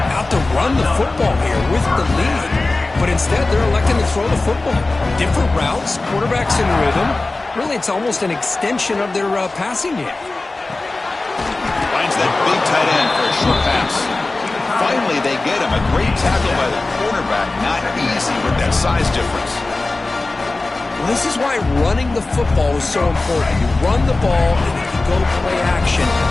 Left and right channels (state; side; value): quieter; right; 3.2 dB